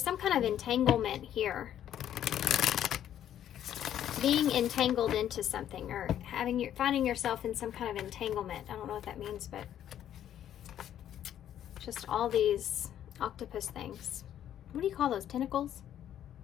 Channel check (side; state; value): right; quieter; 10.7 dB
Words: some kind of entanglement here. Being entangled into something, or finding yourself in some kind of entanglement. I don't know what that means, but just all these octopus things. What do you call those? Tentacles?